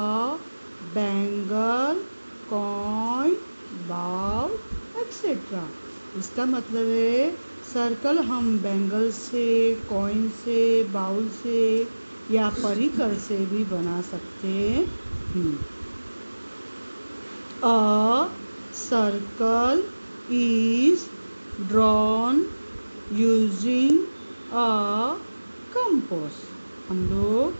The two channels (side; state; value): both; inverted; correlation -1.00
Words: bangle, coin, bowl etcetera. इसका मतलब है सर्कल हम बैंगल से, कॉइन से, बाउल से या परिकर से भी बना सकते हैं। A circle is drawn using a compass. हम